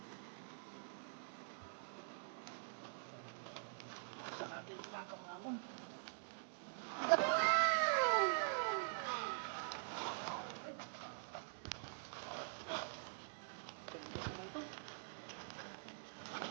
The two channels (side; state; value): left; silent; digital silence